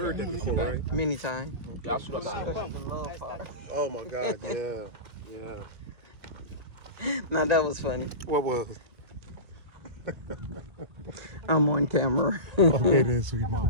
that before, right? Many times. Oh my God, yeah. Now that was funny. What was it? I'm on camera. Okay then, sweet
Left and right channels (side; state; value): left; late; 1.8 ms